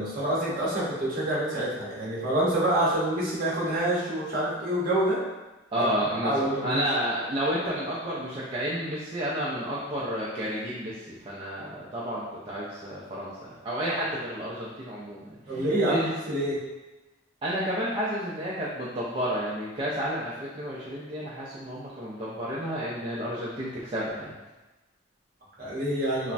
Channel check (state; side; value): normal; both; correlation 0.27